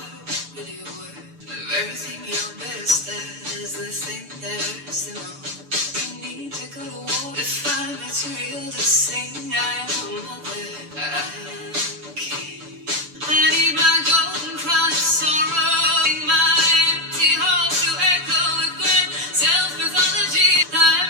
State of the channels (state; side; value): late; left; 6.8 ms